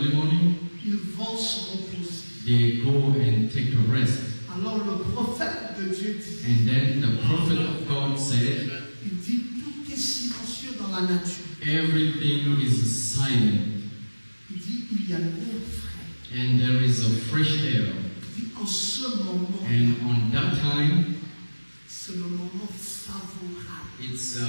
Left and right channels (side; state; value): both; inverted; correlation -1.00